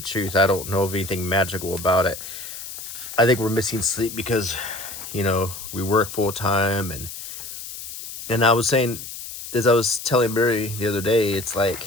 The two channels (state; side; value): noise; left; hiss, 10 dB below the sound